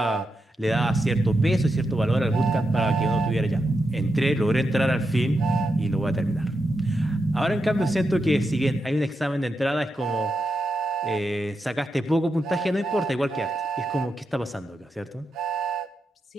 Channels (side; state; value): both; normal; correlation 0.86